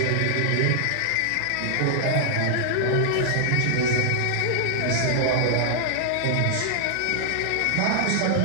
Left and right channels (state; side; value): different; both; correlation -0.01